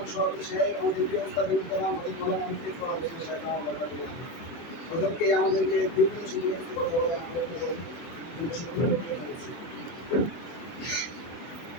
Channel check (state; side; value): late; right; 24 ms